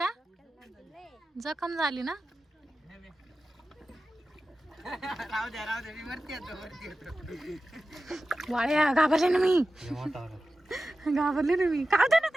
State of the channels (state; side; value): normal; both; correlation 0.94